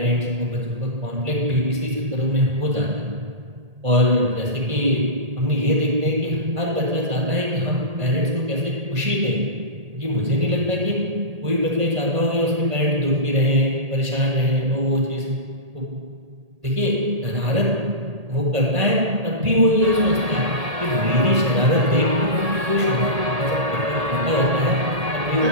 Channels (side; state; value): left; late; 1.8 ms